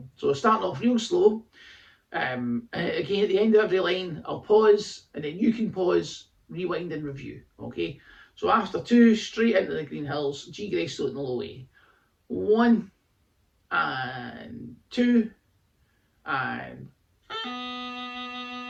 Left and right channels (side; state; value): both; identical; correlation 1.00